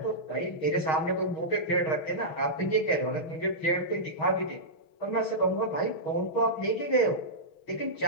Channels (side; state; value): right; late; 6.3 ms